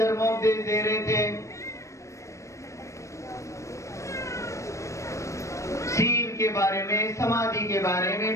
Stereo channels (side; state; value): right; late; 0.15 ms